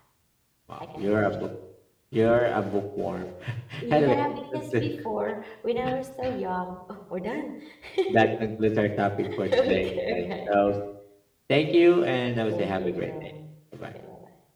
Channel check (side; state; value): both; identical; correlation 1.00